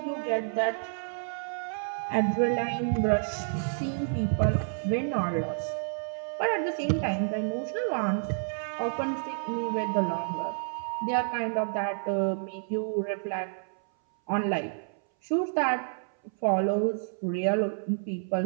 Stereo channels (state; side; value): silent; left; 58 dB below the other